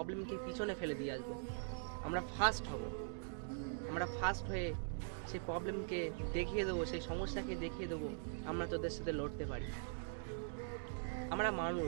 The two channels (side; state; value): left; silent; digital silence